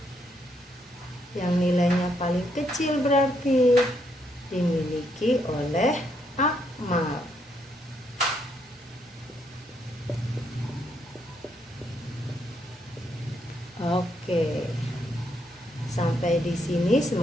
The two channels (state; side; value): normal; both; correlation 0.75